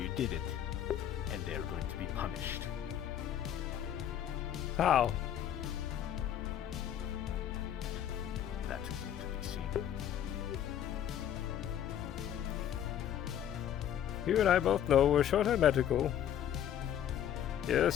did it, and they are going to be punished. How? That is yet to be seen. You and I both know we're short on medical.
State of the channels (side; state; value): right; quieter; 10.2 dB